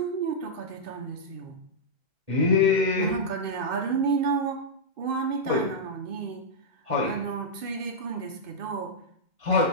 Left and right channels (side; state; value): left; late; 2.5 ms